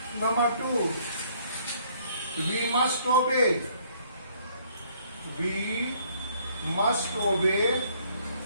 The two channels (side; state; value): both; inverted; correlation -0.63